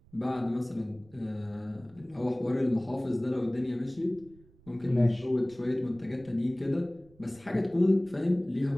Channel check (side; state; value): right; noise; rumble, 26 dB below the sound